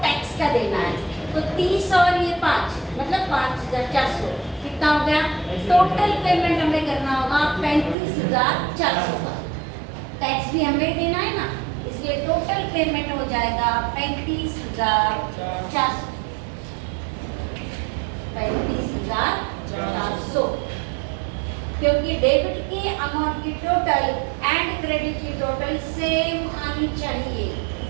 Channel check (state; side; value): drops out; left; at 8.0 s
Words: टैक्स का देना है। तो 30 और ये 5 मतलब 5,400 कितना हो गया, टोटल पेमेंट हमें करना होगा 35,400 का। टैक्स भी हमें देना है ना, इसलिए टोटल पेमेंट हो जाएगा 35,400, 35,400। क्योंकि डेबिट की अमाउंट की टोटल एंड क्रेडिट की टोटल सेम आनी चाहिए।